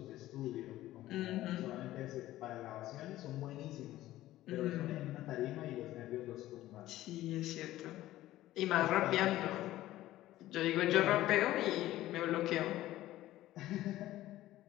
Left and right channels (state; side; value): quieter; right; 15.2 dB